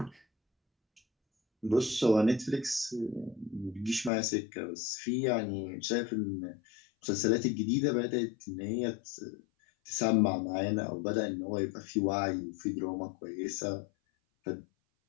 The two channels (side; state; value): right; drops out; at 4.1 s